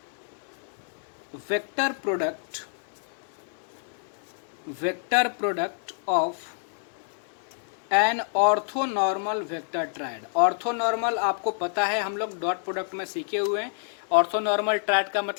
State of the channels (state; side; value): silent; right; 55 dB below the other